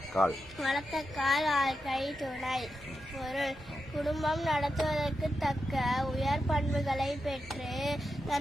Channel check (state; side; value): normal; both; correlation 0.88